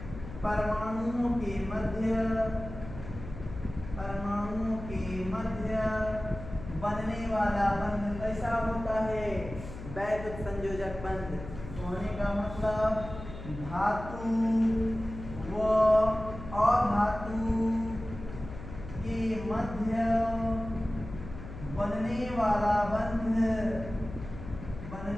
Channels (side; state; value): left; noise; hum, 11 dB below the sound